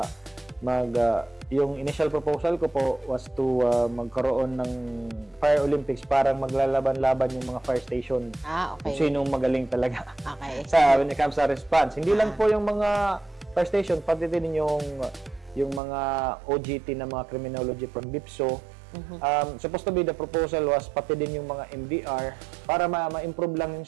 yung initial proposal ko po was to magkaroon ng Fire Olympics, parang maglalaban-laban yung mga fire station. Kung sinong magaling talaga when it comes sa response. Hindi lang po yung mga fire station, pati din yung mga OGT na mga criminology from BIPSO. Supposed to be the proposal was pati din yung mga MDR para ma-improve lang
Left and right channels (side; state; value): left; drops out; at 15.8 s